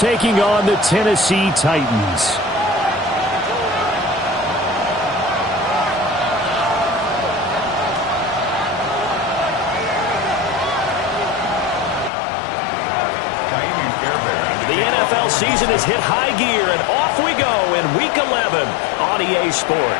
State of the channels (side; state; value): right; drops out; at 12.1 s